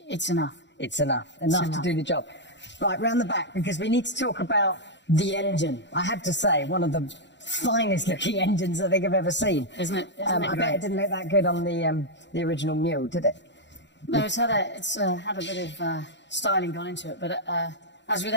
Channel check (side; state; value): right; late; 0.52 ms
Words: enough. It's enough to do the job. Right, round the back, because we need to talk about the engine. I have to say, one of the finest looking engines I think I've ever seen. Isn't it? I bet it didn't look that good on the original Mule, did it? No, it's had a bit of styling gone into it, but as with